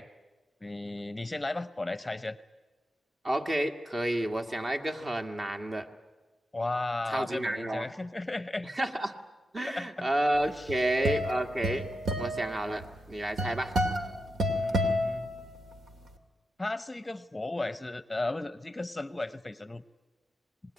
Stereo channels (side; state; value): both; normal; correlation 0.88